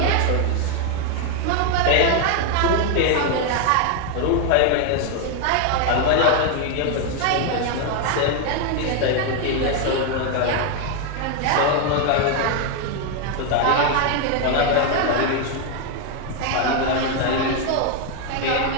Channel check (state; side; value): different; both; correlation 0.01